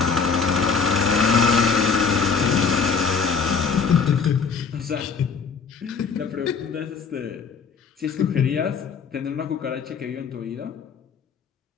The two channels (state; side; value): quieter; right; 5.6 dB